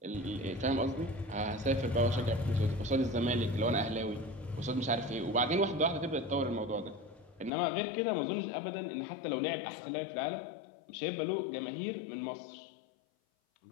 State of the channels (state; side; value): drops out; right; at 7.5 s